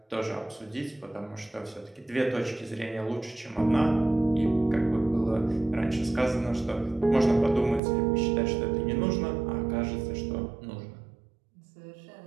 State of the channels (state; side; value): drops out; left; at 7.8 s